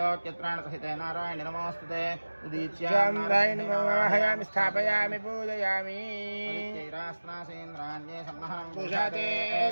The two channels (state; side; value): inverted; both; correlation -1.00